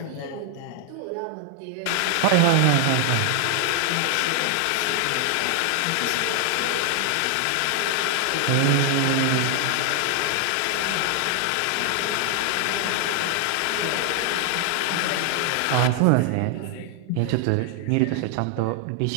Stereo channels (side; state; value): both; different; correlation 0.00